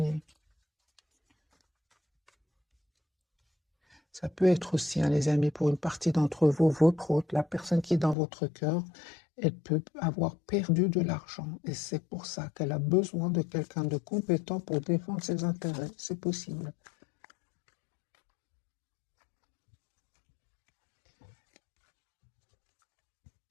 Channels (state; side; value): drops out; right; at 8.2 s